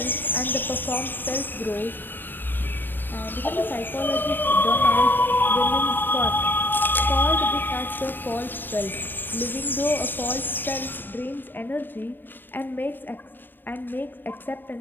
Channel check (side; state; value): right; late; 0.093 ms